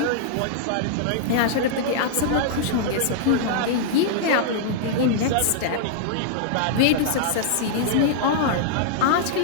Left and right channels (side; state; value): both; different; correlation -0.01